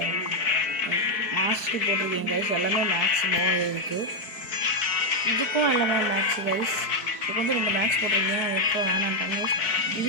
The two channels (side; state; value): right; late; 4.6 ms